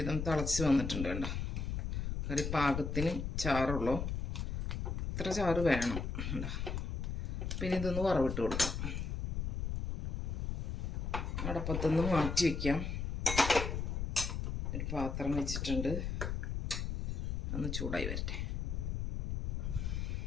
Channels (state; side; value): noise; left; rumble, 2 dB below the sound